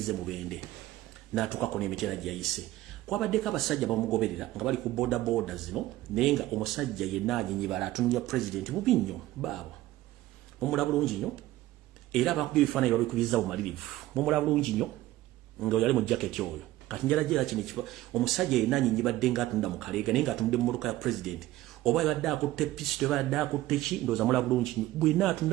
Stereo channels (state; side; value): quieter; left; 16.1 dB